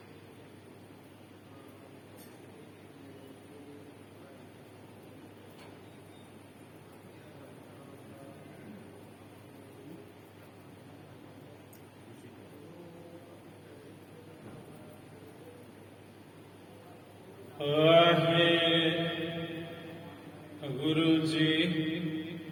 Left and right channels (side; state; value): both; identical; correlation 1.00